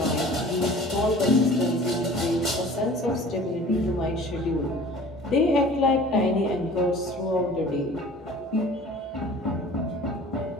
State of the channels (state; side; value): normal; both; correlation 0.45